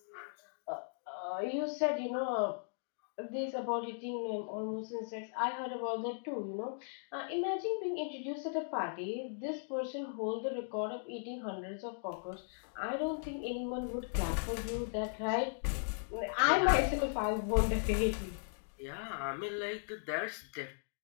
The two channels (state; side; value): silent; right; digital silence